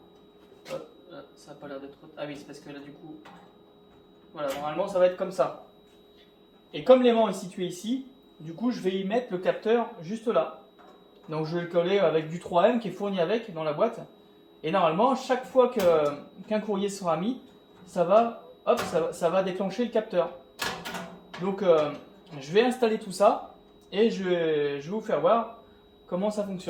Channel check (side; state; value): both; identical; correlation 1.00